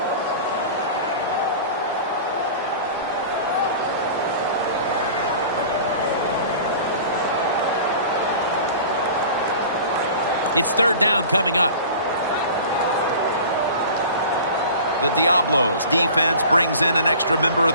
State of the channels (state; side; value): inverted; both; correlation -0.40